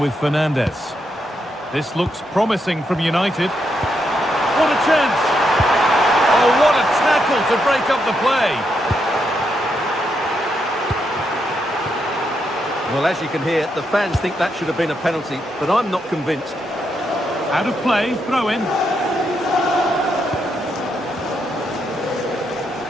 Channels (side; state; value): both; normal; correlation 0.80